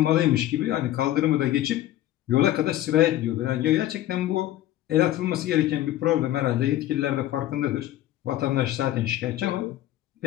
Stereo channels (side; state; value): right; quieter; 13.9 dB